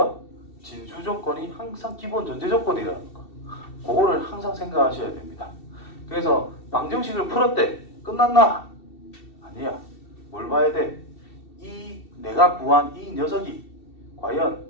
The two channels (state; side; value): late; right; 2.7 ms